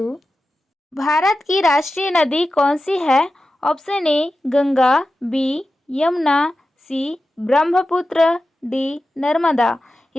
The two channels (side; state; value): both; normal; correlation 0.93